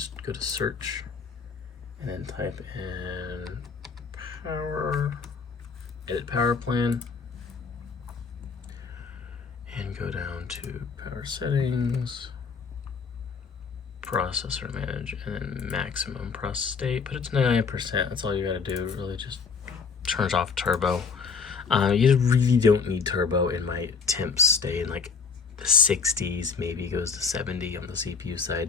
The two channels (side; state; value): right; quieter; 5.4 dB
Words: go to search, and then type in power. Edit power plan, and go down to power settings, processor manage, and then maximum process state. Put it to 99%. That's all you gotta do. Really, just turns off turbo. You really don't need turbo. In my temps stay in like the 60s, maybe goes to 70 on the CPU